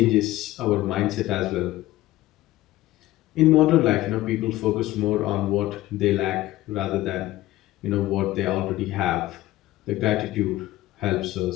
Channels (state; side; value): quieter; right; 16.5 dB